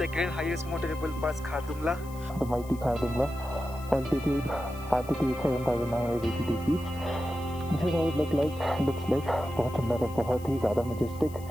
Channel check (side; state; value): left; noise; hiss, 21 dB below the sound